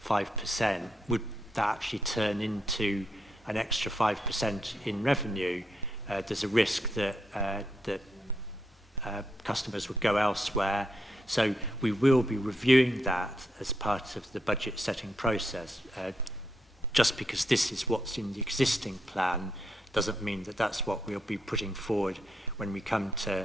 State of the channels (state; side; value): normal; both; correlation 0.79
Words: 5%, would that actually turn into an extra 5% in revenue? There's a risk that customers would go elsewhere. So we will be reviewing that as part of the budget setting process. Just because this is what's in the existing plan doesn't mean that that's what we'll be putting forward when we come to